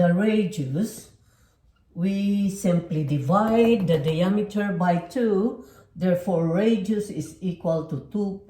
radius, we simply divide the diameter by 2. Therefore, radius is equal to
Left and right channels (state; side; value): identical; both; correlation 1.00